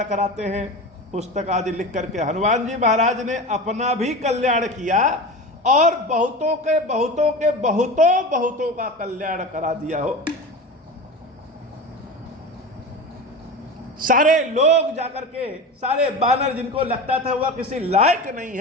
कराते हैं पुस्तक आदि लिख करके। हनुमान जी महाराज ने अपना भी कल्याण किया और बहुतों के बहुतों के बहुतों बहुतों का कल्याण करा दिया हो। सारे लोग जाकर के, सारे बानर जिनको लगता था वह किसी लायक नहीं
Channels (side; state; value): both; normal; correlation 0.28